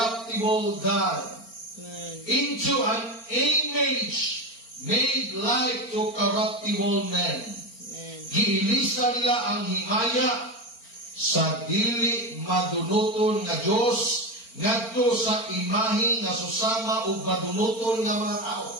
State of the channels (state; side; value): late; right; 4.4 ms